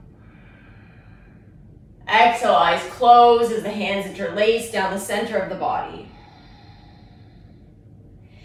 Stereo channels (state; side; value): identical; both; correlation 1.00